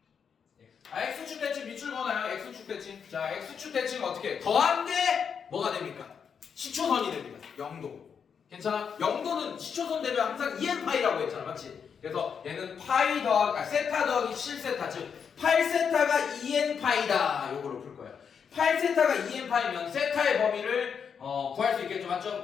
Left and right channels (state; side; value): quieter; right; 6.8 dB